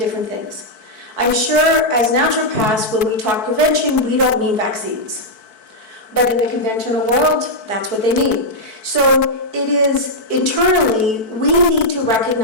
things. I'm sure as naturopaths, when we talk prevention, we don't mean vaccines. But in the conventional world, that's what they mean. So it is internally, we need to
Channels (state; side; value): late; right; 4.6 ms